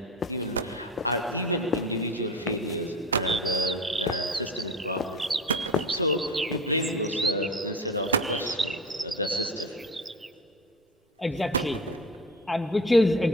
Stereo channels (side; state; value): both; normal; correlation 0.31